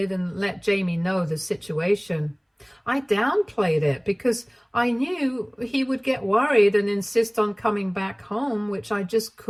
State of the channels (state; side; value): identical; both; correlation 1.00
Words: and let Jamie know the situation. I downplayed it because I knew he would get worried and insist on coming back home, which I just